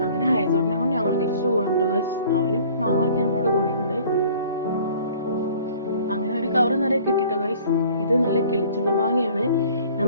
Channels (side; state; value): both; inverted; correlation -0.52